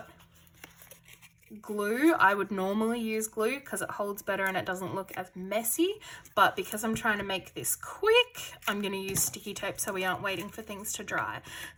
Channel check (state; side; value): identical; both; correlation 1.00